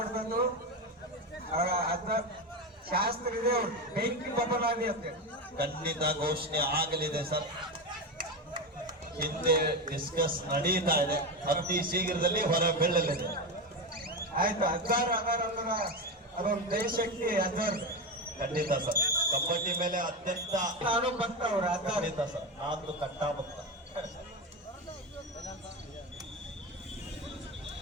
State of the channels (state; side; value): normal; both; correlation 0.16